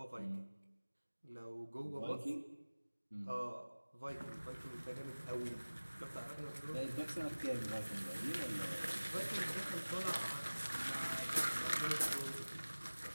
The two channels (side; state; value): both; inverted; correlation -1.00